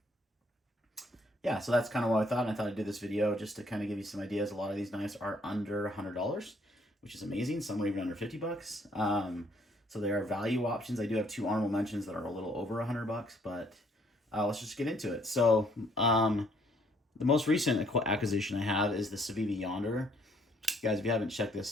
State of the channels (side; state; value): both; normal; correlation 0.65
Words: yeah, so that's kind of what I thought. And I thought I'd do this video just to kind of give you some ideas. A lot of these knives are under $100, which is amazing. Some are even under $50. So there are value options. I do have two honorable mentions that are a little over $100, but let's just get into it. So the most recent acquisition I have is the Civivi Yonder. Guys, if you haven't checked